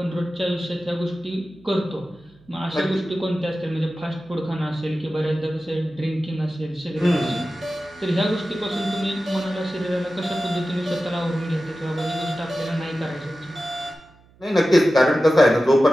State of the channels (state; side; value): noise; right; hum, 28 dB below the sound